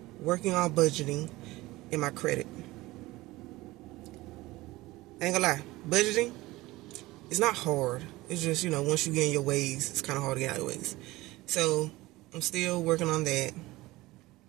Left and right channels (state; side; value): quieter; left; 19.4 dB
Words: Working on budgeting and my credit. I ain't gonna lie. Budgeting, it's not hard. It's just, you know, once you get in your ways, it's kind of hard to get out of your ways. So, I'm still working on that.